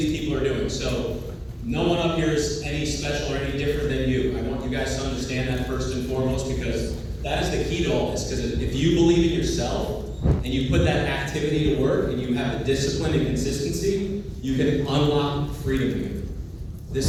people are doing. So no one up here is any special or any different than you. I want you guys to understand that first and foremost, because that is the key to all this. Because if you believe in yourself and you put that activity to work and you have the discipline and consistency, you can unlock freedom here.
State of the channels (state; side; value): identical; both; correlation 1.00